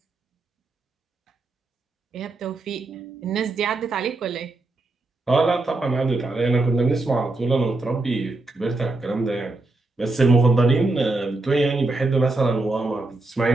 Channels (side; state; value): left; quieter; 3.0 dB